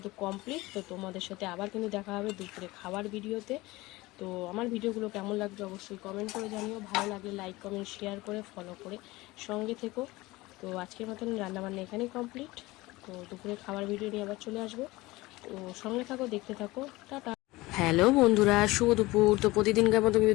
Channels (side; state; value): right; quieter; 20.3 dB